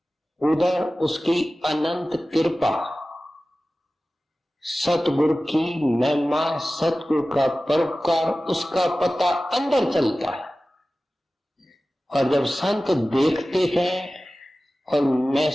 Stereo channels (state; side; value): normal; both; correlation 0.96